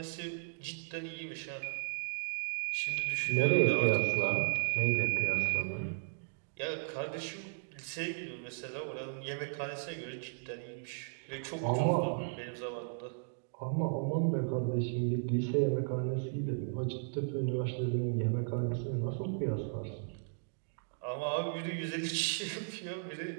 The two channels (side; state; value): left; silent; digital silence